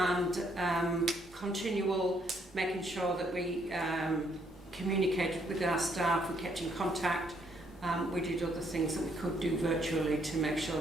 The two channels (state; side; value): normal; both; correlation 0.70